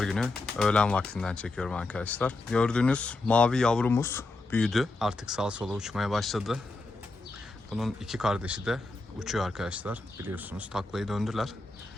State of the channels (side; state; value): right; quieter; 3.2 dB